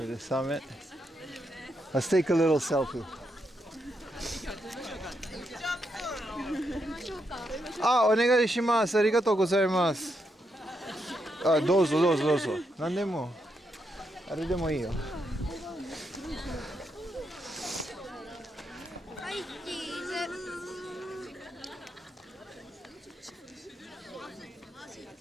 the summit. Let's take a little selfie. Ah, お願いします。ありがとうございます。あ、どうぞどうぞどうぞ。何でも。あれでもいいよ。はい、チーズ。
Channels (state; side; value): normal; both; correlation 0.81